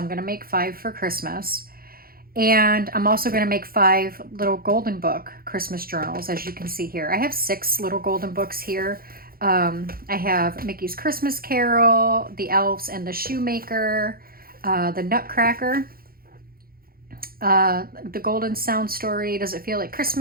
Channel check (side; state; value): left; late; 0.43 ms